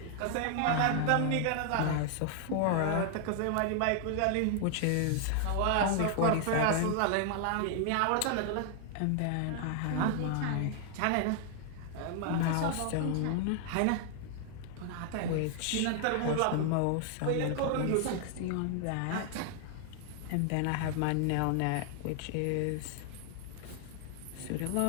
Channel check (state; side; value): different; both; correlation 0.00